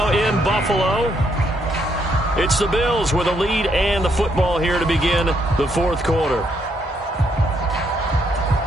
in Buffalo. It's the Bills with a lead and the football here to begin the fourth quarter.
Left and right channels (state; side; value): normal; both; correlation 0.74